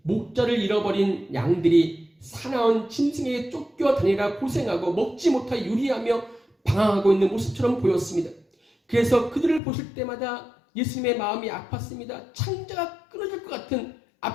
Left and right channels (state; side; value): drops out; right; at 9.6 s